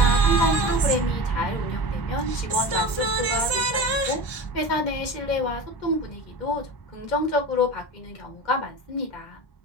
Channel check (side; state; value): right; late; 1.3 ms